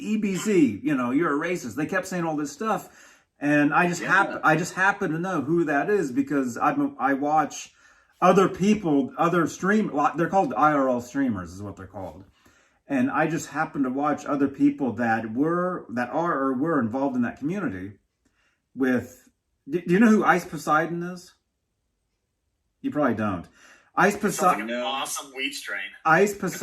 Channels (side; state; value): both; identical; correlation 1.00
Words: EBZ, you know, you're a racist. They kept saying all this stuff, and I just happen to know who that is because I watch other people, other stream. They're called IRL streamers, is what they're called. And I just happen to watch other people that are or were involved in that community with. Do you know who Ice Poseidon is? You probably don't. Ice Sounds like Poseidon. an awesome weed strain. Ice